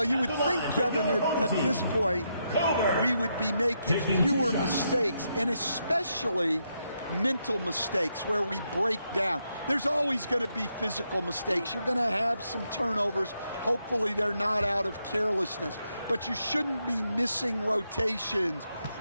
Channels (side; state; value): both; inverted; correlation -0.81